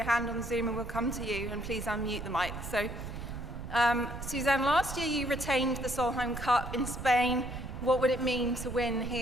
hand on Zoom and we'll come to you, and please unmute the mic. So, Suzann, last year you retained the Solheim Cup in Spain. What would it mean to win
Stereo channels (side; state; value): right; noise; rumble, 9 dB below the sound